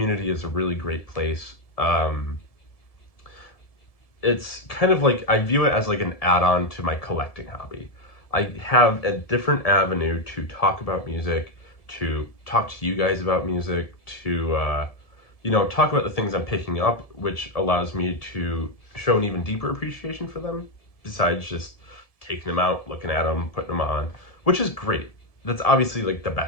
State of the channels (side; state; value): right; late; 1.7 ms